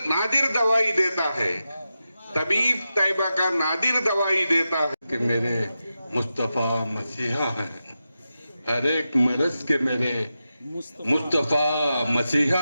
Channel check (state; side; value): inverted; both; correlation -0.91